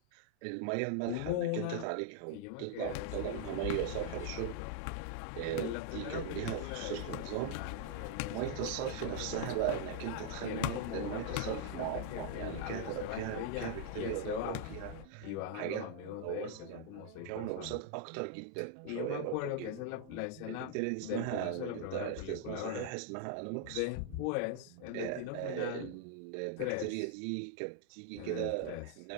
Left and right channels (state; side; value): different; both; correlation 0.00